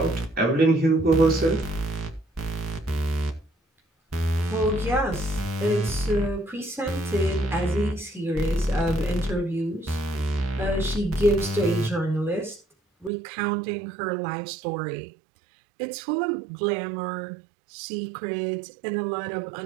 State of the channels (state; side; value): drops out; left; at 13.1 s